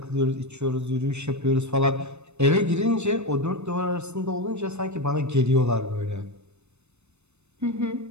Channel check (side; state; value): left; late; 0.81 ms